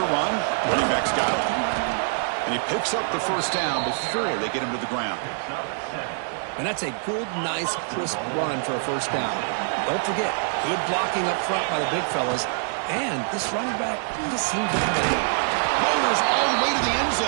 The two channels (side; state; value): left; silent; 62 dB below the other